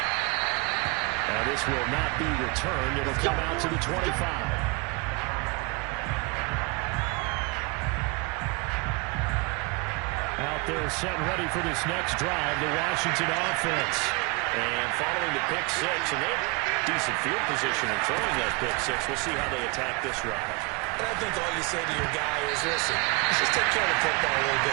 And this will not be returned. It'll come out to the 25. Out there set and ready for this next drive, the Washington offense. And following the pick 6, and they have decent field position in throwing that pick 6. We'll see how they attack this drive. And I think all you say to your guy is, listen, let's just take care of the football a little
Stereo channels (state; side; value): quieter; left; 27.7 dB